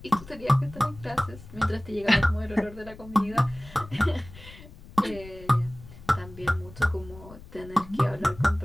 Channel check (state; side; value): noise; left; rumble, 18 dB below the sound